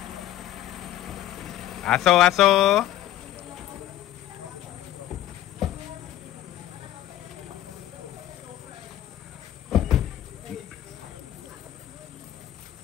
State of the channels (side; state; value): right; quieter; 13.2 dB